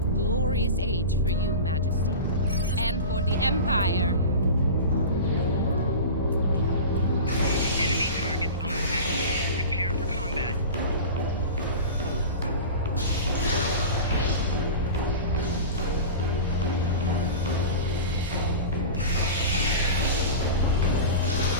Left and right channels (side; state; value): both; inverted; correlation -0.31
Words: glorious age for you, Majesty. And for the Empire. Enemy targets on set. Prepare for combat.